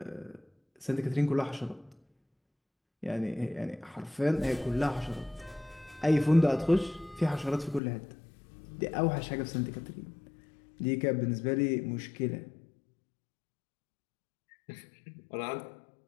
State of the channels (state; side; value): drops out; right; at 7.8 s